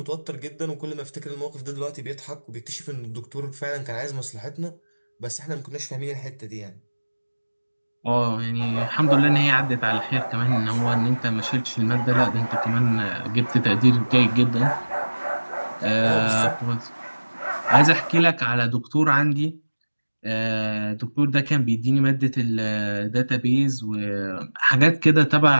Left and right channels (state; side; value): inverted; both; correlation -1.00